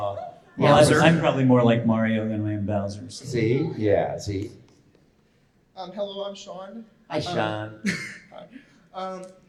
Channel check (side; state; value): both; identical; correlation 1.00